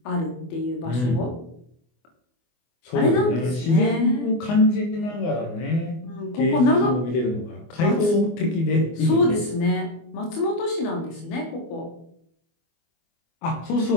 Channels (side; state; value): right; late; 24 ms